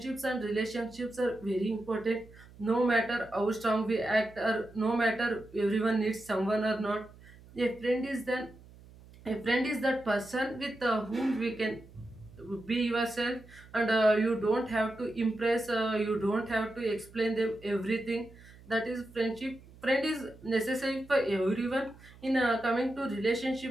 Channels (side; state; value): right; noise; hum, 22 dB below the sound